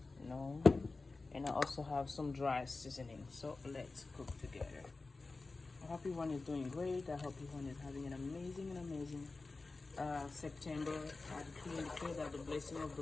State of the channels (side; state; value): right; quieter; 3.7 dB